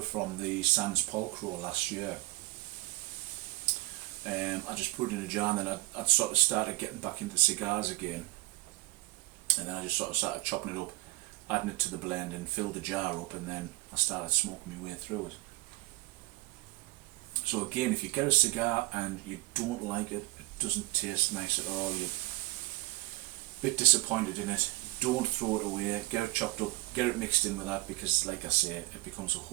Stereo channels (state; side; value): quieter; left; 20.9 dB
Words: from the Sans Polcro last year. I just put it in a jar, and then I'd sort of started getting back into cigars again, and then I just sort of started chopping it up, adding it to the blend and filled the jar up, and then I started smoking my way through it. So again, if you get a cigar and you don't like it, it doesn't taste nice at all, you're a bit disappointed in it, don't throw it away, get it chopped up, get it mixed in with that, because like I say, it becomes a